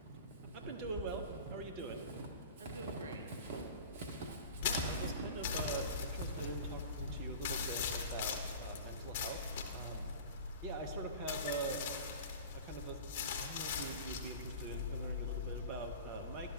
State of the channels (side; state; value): both; inverted; correlation -0.36